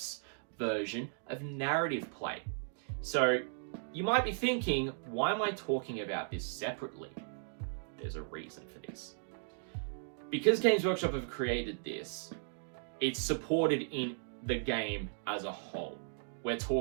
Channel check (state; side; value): silent; left; digital silence